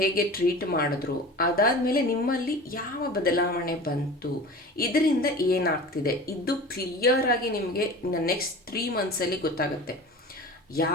ಟ್ರೀಟ್ ಮಾಡಿದ್ರು, ಅದಾದಮೇಲೆ ನಿಮ್ಮಲ್ಲಿ ಯಾವ ಬದಲಾವಣೆ ಬಂತು, ಇದರಿಂದ ಏನಾಗ್ತಿದೆ, ಇದು ಕ್ಲಿಯರ್ ಆಗಿ ನಿಮಗೆ ನೆಕ್ಸ್ಟ್ 3 ಮಂತ್ಸಲ್ಲಿ ಗೊತ್ತಾಗುತ್ತೆ.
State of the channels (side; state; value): both; normal; correlation 0.37